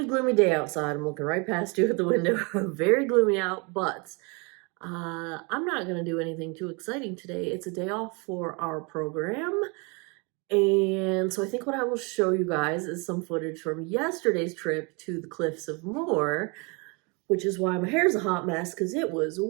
gloomy day outside. I'm looking right past you at the window. Very gloomy out, but I'm not going to do anything too exciting today. It's a day off for our program. And so I think what I will show you guys is some footage from yesterday's trip to the Cliffs of Moher, which is why my hair's a hot mess, because it was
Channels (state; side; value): quieter; left; 30.9 dB